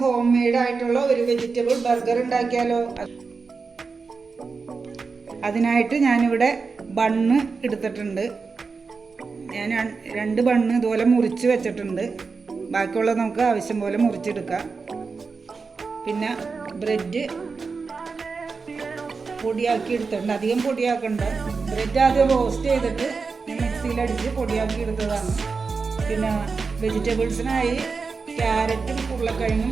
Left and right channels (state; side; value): quieter; left; 4.7 dB